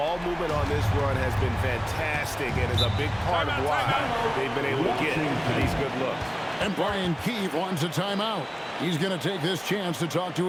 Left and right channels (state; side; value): identical; both; correlation 1.00